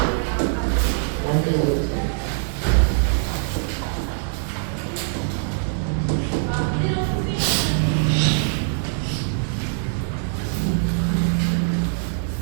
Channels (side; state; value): left; silent; 64 dB below the other